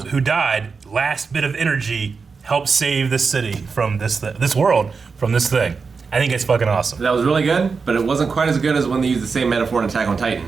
died, last bit of energy helped save this city from this world from this thing. I think it's fucking awesome. That was really good, but it wasn't quite as good as when they used the same metaphor in Attack on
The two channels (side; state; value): left; quieter; 5.0 dB